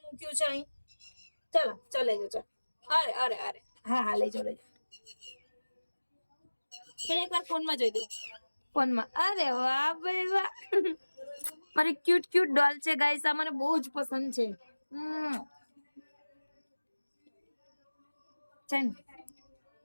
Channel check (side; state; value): both; inverted; correlation -1.00